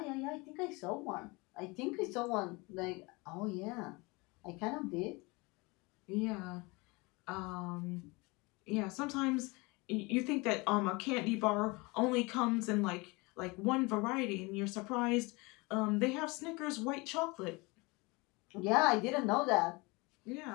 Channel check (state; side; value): quieter; right; 25.8 dB